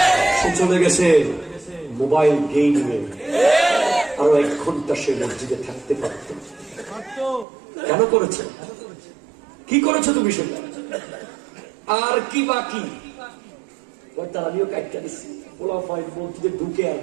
সে চলে গেছে মোবাইল গেমিংয়ে। আরো 1 ঘন্টা সে মসজিদে থাকতে পারত। কেন করেছে? কি করেছো তুমি সেটা? আর কি বাকি? আমিও কাটটা দিচ্ছি, পোলা ফাইন মসজিদে ঢুকে আর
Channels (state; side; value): drops out; left; at 7.5 s